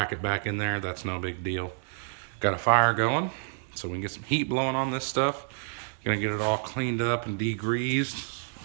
back in there. That's no big deal. Got a fire going, so we can get some heat blowing on this stuff. Gonna get it all cleaned up and degreased,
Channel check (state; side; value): silent; left; digital silence